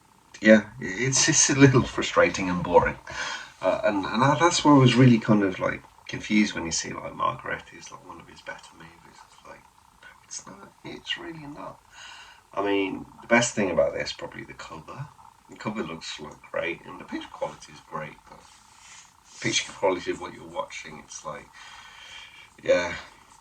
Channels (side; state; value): both; identical; correlation 1.00